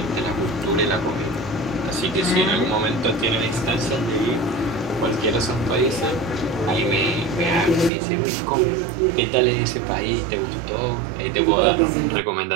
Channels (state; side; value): drops out; left; at 7.9 s